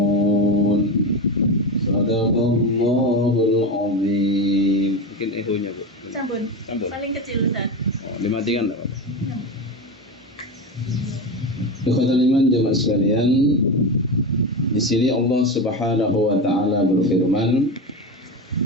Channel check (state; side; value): normal; both; correlation 0.20